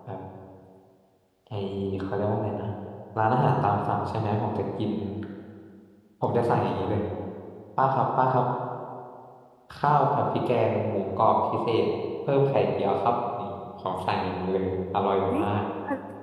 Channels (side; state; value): both; identical; correlation 1.00